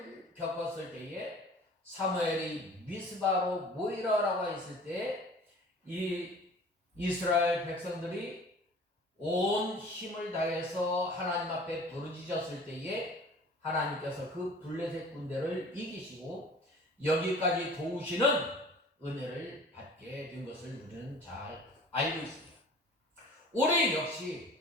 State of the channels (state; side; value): normal; both; correlation 0.46